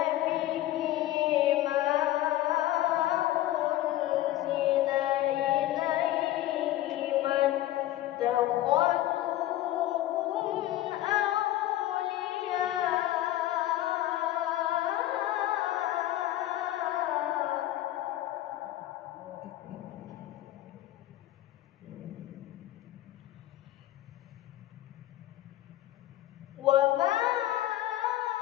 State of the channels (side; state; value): right; quieter; 14.5 dB